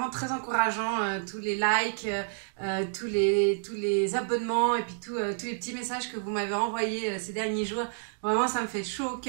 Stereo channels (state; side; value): silent; left; digital silence